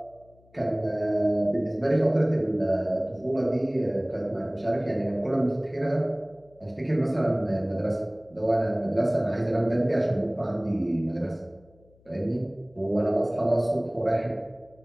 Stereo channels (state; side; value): noise; left; hum, 30 dB below the sound